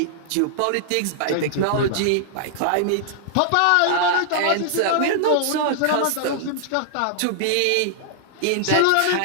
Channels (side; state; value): both; different; correlation -0.01